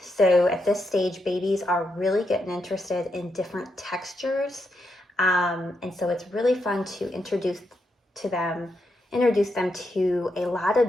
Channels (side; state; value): both; normal; correlation 0.82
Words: So at this stage, babies are really getting interested in different textures. And so it's really fun to introduce them to a lot